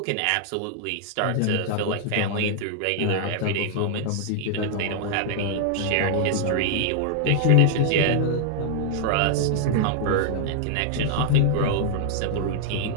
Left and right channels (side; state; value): both; different; correlation 0.00